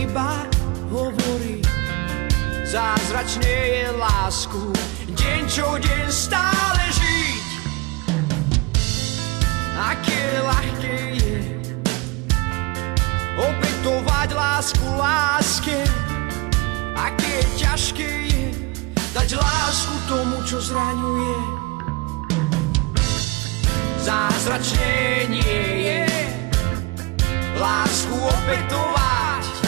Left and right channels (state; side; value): quieter; left; 26.1 dB